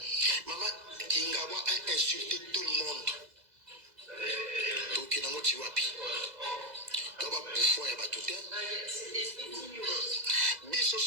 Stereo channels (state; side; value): late; left; 2.0 ms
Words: Maman Kingawa a insulté tout le monde. Donc il n'a pas tiwapi. Doba bouffon ya batuté. Biso